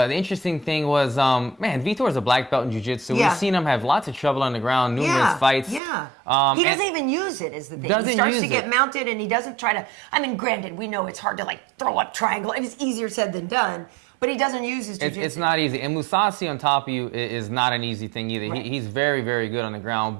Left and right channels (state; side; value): drops out; left; at 5.8 s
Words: interesting thing was, Vitor is a black belt in jiu-jitsu. Yeah. We've seen him have lots of trouble on the ground, numerous fights. Yeah. He doesn't even use it, is the thing. He starts to get mounted, and he doesn't try to. I mean, granted, we know it's hard to throw up triangle. It's easier said than done. But he doesn't use his jiu-jitsu. It's not easy. And Mousasi on top of you is not an easy thing either. Right. He's very, very good on the